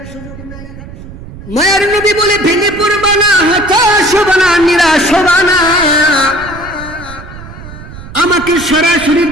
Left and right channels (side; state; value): right; noise; rumble, 15 dB below the sound